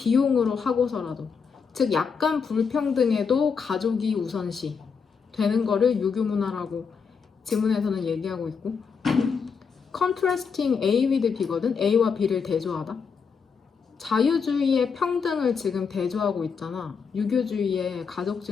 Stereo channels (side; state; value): right; quieter; 5.8 dB